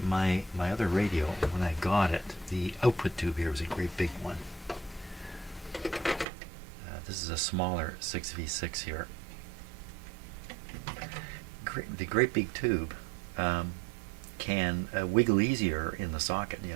other radio when I got it, the output tube here was a great big one. This is a smaller 6V6 here. The great big tube can wiggle easier in the socket, you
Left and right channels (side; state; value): left; drops out; at 6.2 s